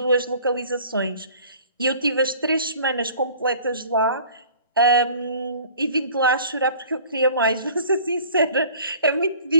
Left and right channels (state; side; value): inverted; both; correlation -0.49